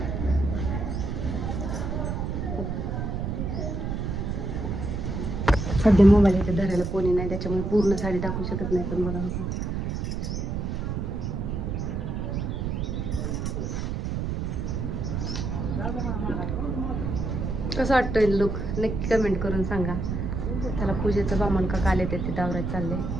सध्या मोबाईल इथे धरायला कोणी नाही त्याच्यामुळे पूर्ण साडी दाखवू शकत नाही. पण बघा बघा कसं वाटतंय लुक नक्की कमेंट करून सांगा. त्याला पूजेचं बामण का काल येते तिथं आवरायचं चाललंय.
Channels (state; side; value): noise; right; rumble, 2 dB below the sound